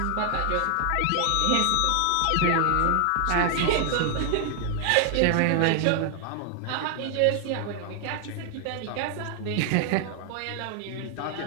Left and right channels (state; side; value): different; both; correlation 0.00